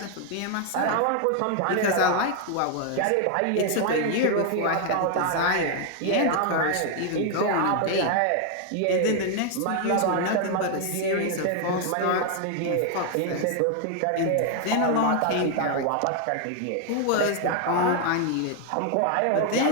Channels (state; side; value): different; both; correlation 0.00